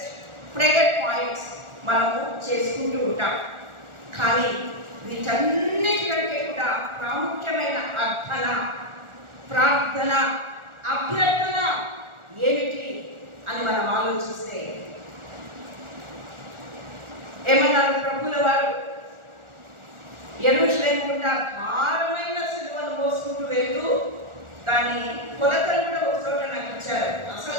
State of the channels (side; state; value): left; late; 1.4 ms